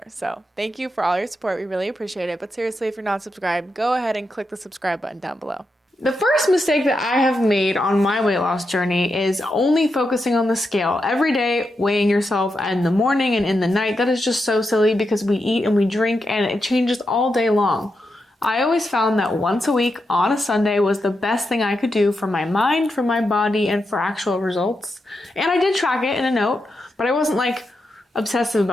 So thank you for all your support. We really appreciate it. But seriously, if you're not subscribed, go ahead and click the subscribe button down below. The first mistake that I have made on my weight loss journey is only focusing on the scale every day, weighing yourself in the morning and in the night. That is just so silly because we eat and we drink and it changes all day long. I always found that once a week on a Sunday was the best thing I could do for my mind, for my body, and for actual results. And I did track it in a note, but I wasn't like obsessive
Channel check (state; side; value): normal; both; correlation 0.86